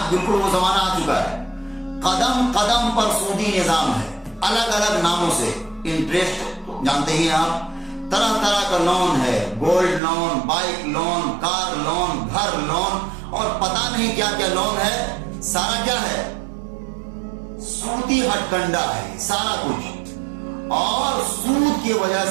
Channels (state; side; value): drops out; left; at 10.0 s